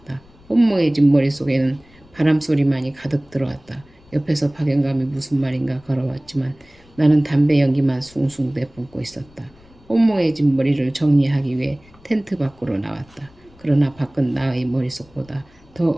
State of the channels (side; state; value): left; noise; rumble, 27 dB below the sound